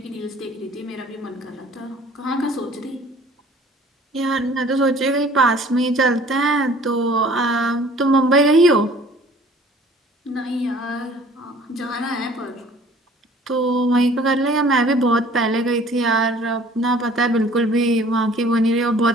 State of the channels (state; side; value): normal; both; correlation 0.52